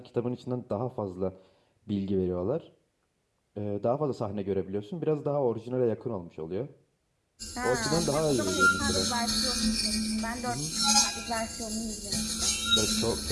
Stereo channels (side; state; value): both; identical; correlation 1.00